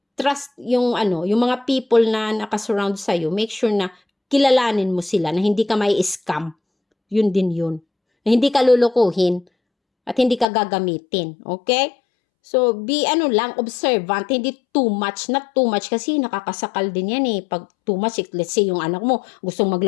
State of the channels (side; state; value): right; drops out; at 10.5 s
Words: Trust yung yung mga people na nakasurround sa'yo. Make sure na kilalanin mo sila, na hindi ka may scam. Yun din yun. Na hindi ka lulukuhin at hindi ka gagamitin. Okay? So, be lang, observant, hindi too much, not too much kasi nakakasakal din yan Pag too much, let's say yung anak mo gustong